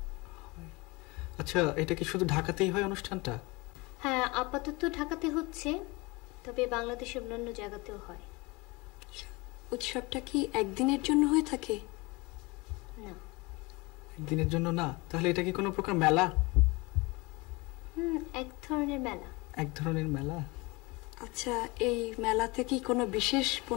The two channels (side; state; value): right; quieter; 24.9 dB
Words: আচ্ছা, এটা কি শুধু ঢাকাতেই হয় অনুষ্ঠানটা? হ্যাঁ, আপাতত ঢাকাতে হচ্ছে, তবে বাংলাদেশের অন্যান্য জায়গাতেও হয়। উৎসবটা কি একদিনের জন্য হয়ে থাকে? না। একদিনের জন্য না? তাহলে এটা কি কোনো প্রকার মেলা? এক ধরনের মেলা। এক ধরনের মেলা। আচ্ছা, এই মেলাতে কি কোনো বিশেষ